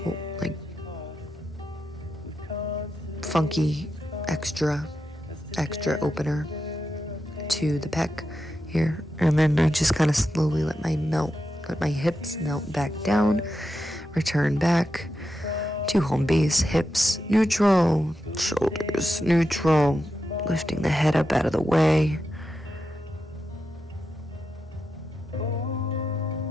like funky extra opener to the pec here. And then I just kind of slowly let my hips melt back down, return back to home base. Hips neutral, shoulders neutral, lifting the head up out of the way.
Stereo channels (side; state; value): both; normal; correlation 0.88